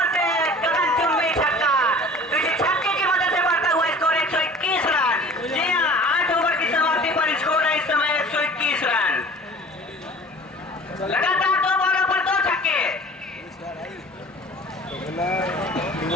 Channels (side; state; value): both; normal; correlation 0.44